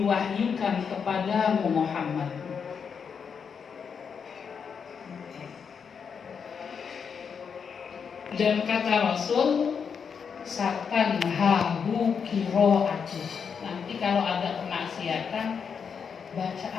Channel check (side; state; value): right; quieter; 6.5 dB